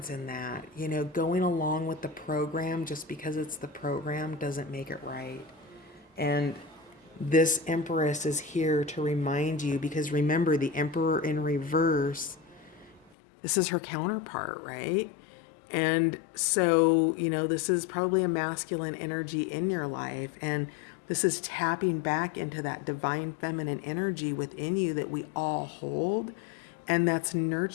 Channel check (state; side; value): drops out; right; at 13.1 s